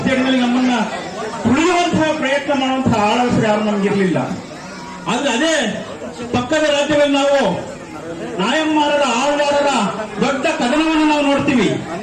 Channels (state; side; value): identical; both; correlation 1.00